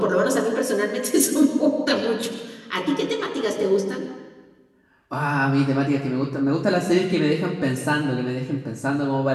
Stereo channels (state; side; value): identical; both; correlation 1.00